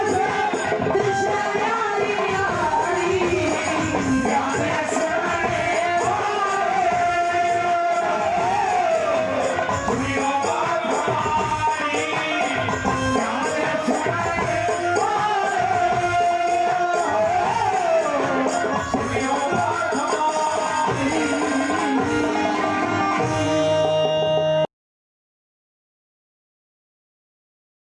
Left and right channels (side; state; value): both; identical; correlation 1.00